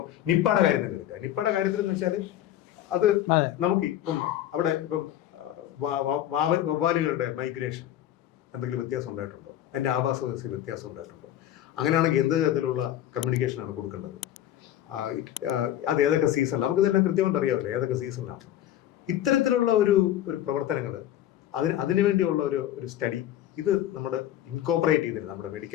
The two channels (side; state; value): right; quieter; 12.3 dB